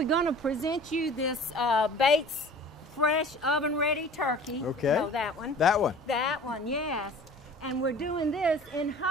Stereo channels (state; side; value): normal; both; correlation 0.44